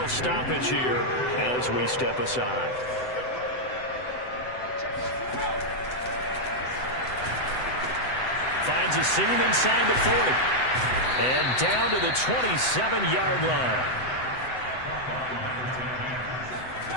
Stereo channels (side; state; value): right; late; 7.9 ms